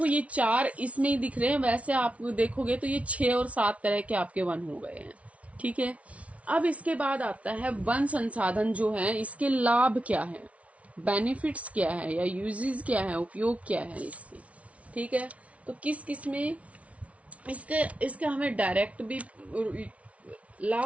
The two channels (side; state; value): left; late; 0.065 ms